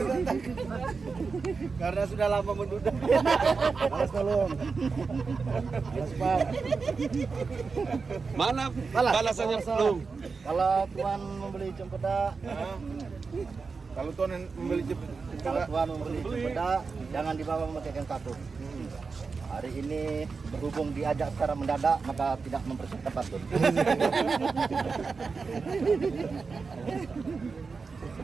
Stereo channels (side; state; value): left; quieter; 4.7 dB